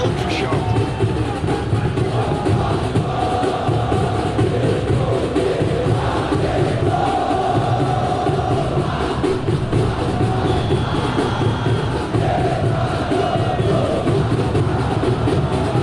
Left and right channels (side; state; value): both; identical; correlation 1.00